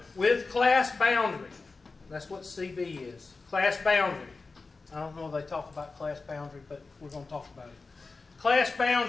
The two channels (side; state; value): right; quieter; 4.0 dB